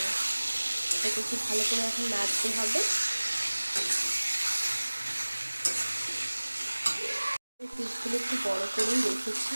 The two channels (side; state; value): both; inverted; correlation -1.00